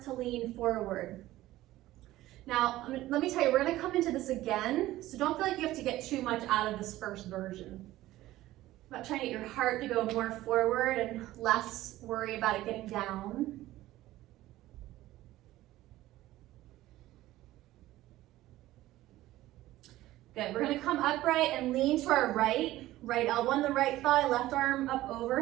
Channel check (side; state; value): left; quieter; 15.9 dB